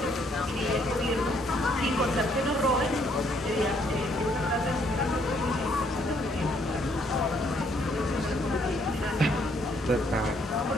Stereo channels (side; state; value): both; normal; correlation 0.68